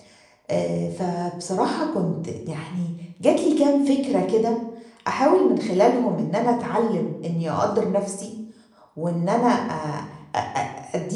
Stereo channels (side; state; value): both; identical; correlation 1.00